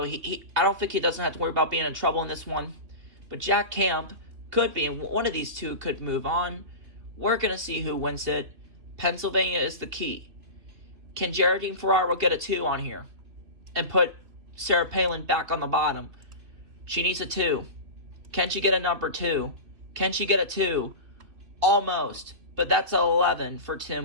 I don't think he doesn't have to worry about being in trouble in this one. But Jack Camp could be, and one of these two could move on. We're going to see who wins it. Pennsylvania is the key. Can Geraldine Ferraro get a 2 on here and put Sarah Palin back on the bottom? She needs a 2. Can she get a number 2? Can she get a 2? Almost. But that's 11 for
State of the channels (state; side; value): late; left; 2.9 ms